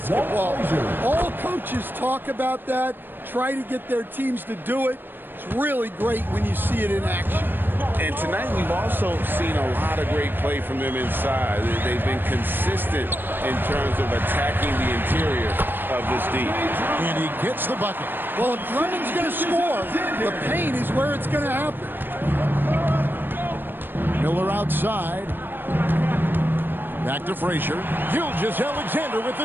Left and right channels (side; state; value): left; late; 0.095 ms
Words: All coaches talk about that, try to get their teams to do it. It's really great when you see it in action. And tonight we've also seen a lot of great play from them inside. They've been consistent in terms of attacking the interior of this D. And he gets the bucket. Well, if Drummond's going to score, the paint is where it's going to happen. Miller outside. Back to Frazier. Gilgeous-Alexander with